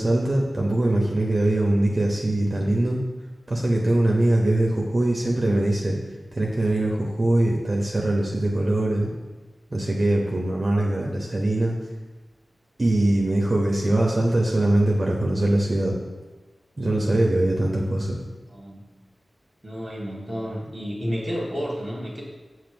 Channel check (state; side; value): normal; both; correlation 0.97